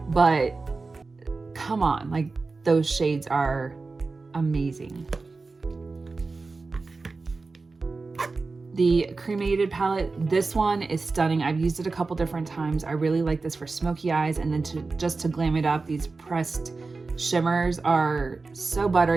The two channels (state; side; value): quieter; left; 3.9 dB